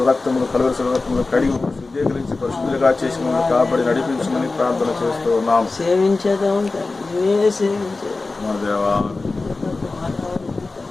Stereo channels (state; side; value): quieter; right; 3.6 dB